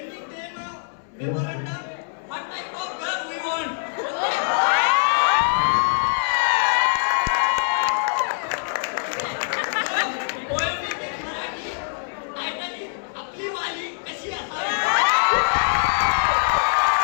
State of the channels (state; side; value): silent; right; 63 dB below the other